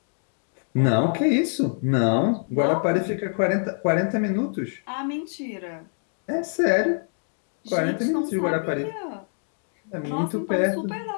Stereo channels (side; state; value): right; silent; 62 dB below the other